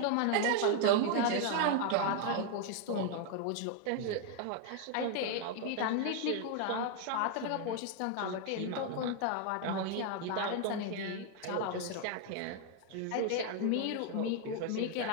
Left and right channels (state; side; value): different; both; correlation 0.00